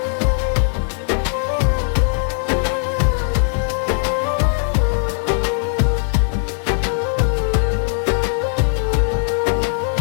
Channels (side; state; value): right; silent; digital silence